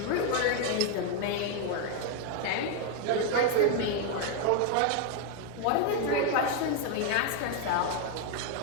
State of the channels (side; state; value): both; different; correlation 0.01